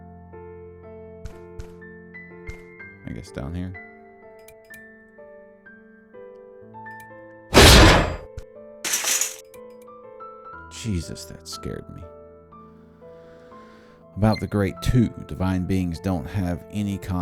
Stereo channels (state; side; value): identical; both; correlation 1.00